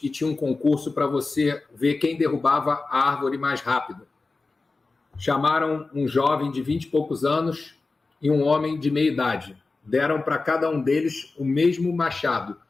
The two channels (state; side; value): quieter; right; 3.7 dB